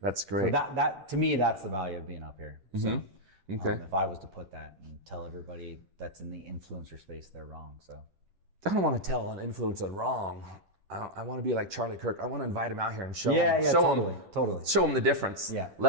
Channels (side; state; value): left; late; 10 ms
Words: That's great. So that to me, that's the value of being up here. Mm-hmm. So, okay. If I was to put that and tell everybody that's in the influencer space, they're wrong. So I don't want to tell an influencer wrong. I want to be like Charlie Kirk. I want to invite him out here and show him the difference. Yeah.